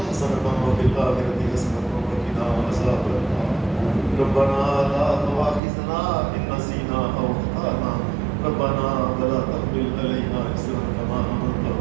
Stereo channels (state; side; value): drops out; left; at 5.6 s